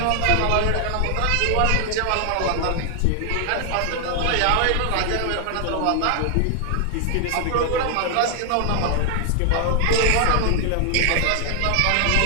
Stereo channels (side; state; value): both; different; correlation 0.00